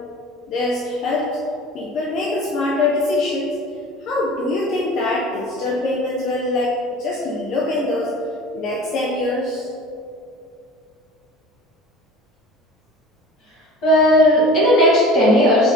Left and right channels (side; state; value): both; normal; correlation 0.40